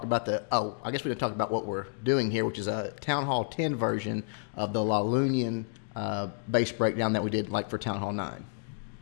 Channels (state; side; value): silent; right; digital silence